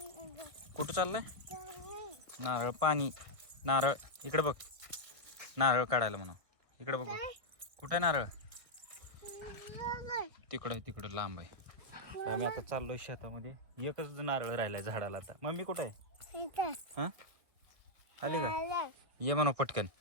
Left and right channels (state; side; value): late; left; 1.8 ms